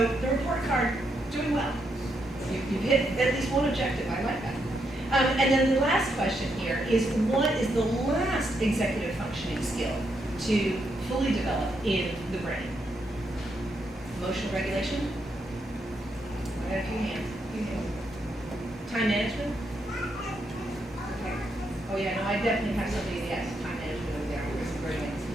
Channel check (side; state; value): both; normal; correlation 0.79